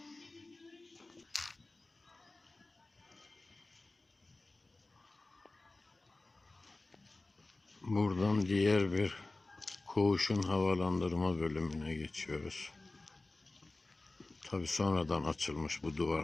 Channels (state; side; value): quieter; right; 3.1 dB